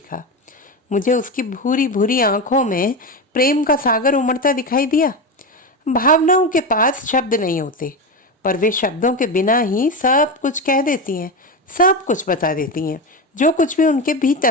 मुझे उसकी भूरी भूरी आंखों में प्रेम का सागर उमड़ता दिखाई दिया। भावनाओं के पास शब्द नहीं होते, पर वे शब्दों के बिना ही सब कुछ कह देती हैं, सब कुछ बता देती हैं, जो कुछ भी उनके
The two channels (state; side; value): normal; both; correlation 0.18